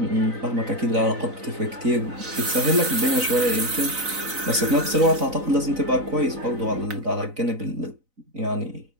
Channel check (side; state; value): left; late; 4.0 ms